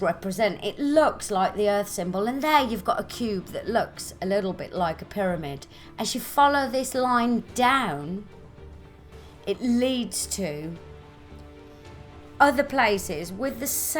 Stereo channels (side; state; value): both; identical; correlation 1.00